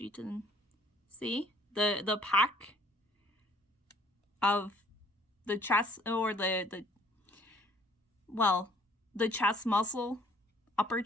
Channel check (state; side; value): normal; both; correlation 0.59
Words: can see, the pack of the chest, or the chest muscle, upper